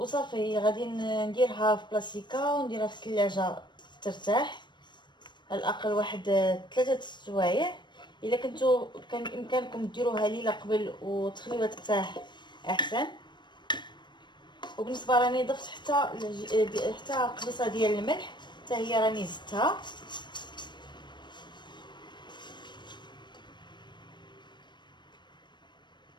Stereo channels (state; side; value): late; right; 0.22 ms